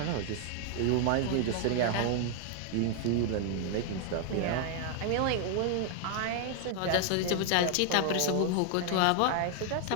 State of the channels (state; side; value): different; both; correlation 0.00